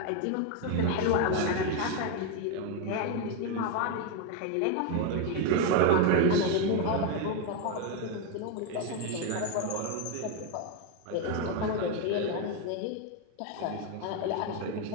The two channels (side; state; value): both; different; correlation 0.01